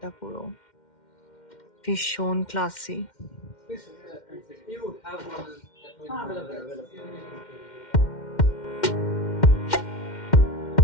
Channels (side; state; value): right; late; 2.1 ms